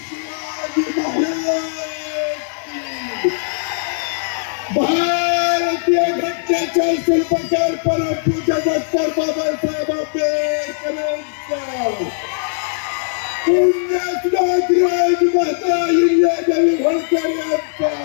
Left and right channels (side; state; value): right; silent; digital silence